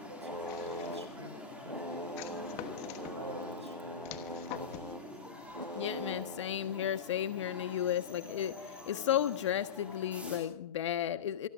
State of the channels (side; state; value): right; quieter; 7.2 dB